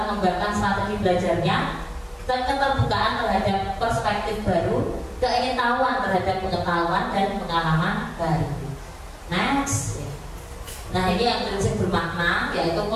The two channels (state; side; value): identical; both; correlation 1.00